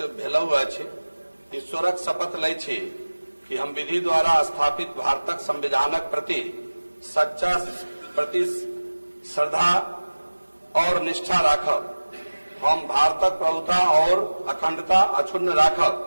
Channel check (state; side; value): inverted; both; correlation -1.00